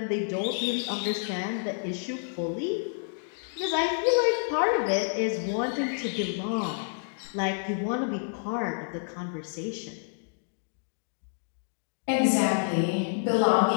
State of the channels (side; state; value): right; silent; digital silence